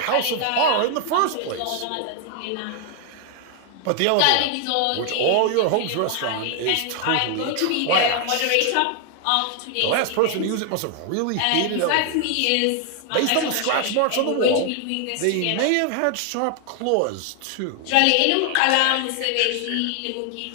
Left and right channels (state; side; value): different; both; correlation 0.00